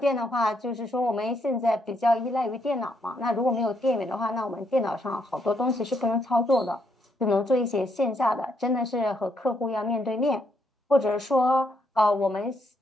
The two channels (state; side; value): normal; both; correlation 0.75